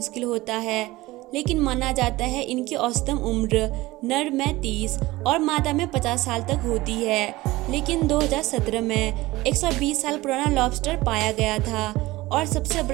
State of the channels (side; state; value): left; quieter; 19.2 dB